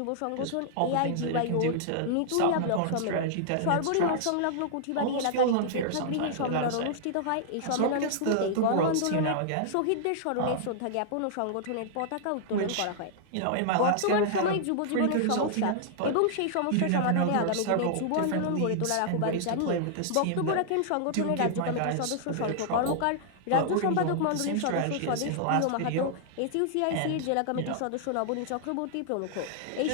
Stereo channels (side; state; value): both; different; correlation -0.01